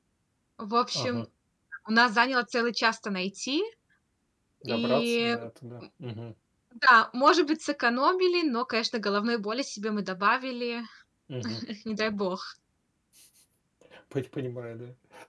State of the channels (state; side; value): identical; both; correlation 1.00